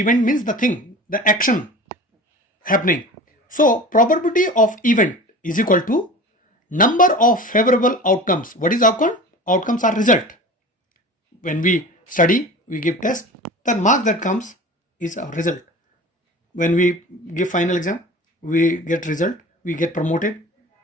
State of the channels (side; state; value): both; normal; correlation 0.37